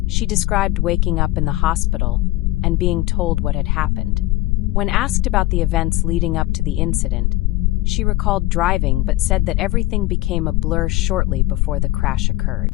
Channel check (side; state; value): right; quieter; 18.2 dB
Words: She described waking up in the hospital and being told what had happened. When asked about the events leading up to the incident, she recalled driving but said that everything became a blur shortly before the crash